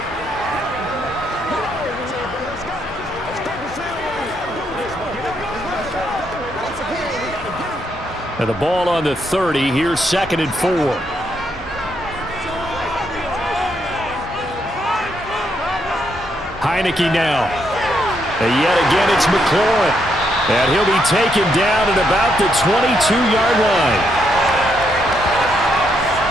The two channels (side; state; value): both; normal; correlation 0.77